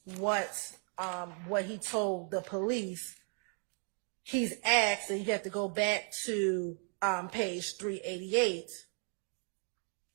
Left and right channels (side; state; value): left; quieter; 39.3 dB